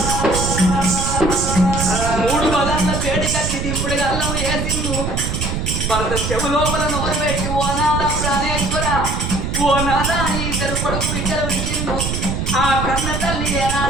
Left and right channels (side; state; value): right; noise; rumble, 2 dB below the sound